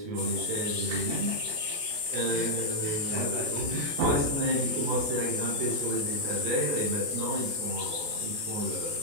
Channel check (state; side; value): late; left; 28 ms